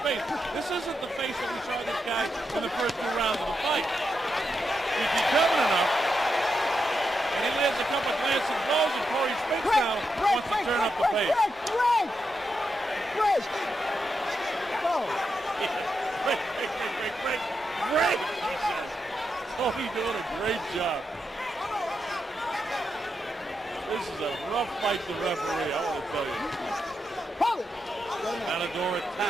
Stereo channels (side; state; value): both; normal; correlation 0.85